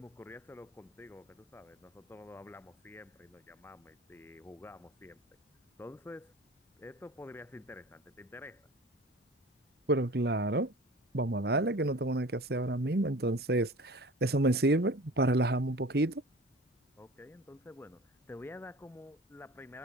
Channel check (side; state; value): both; normal; correlation 0.40